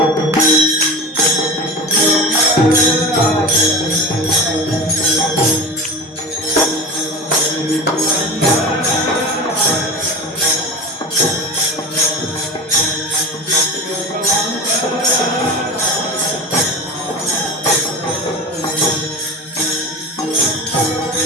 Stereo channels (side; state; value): both; normal; correlation 0.29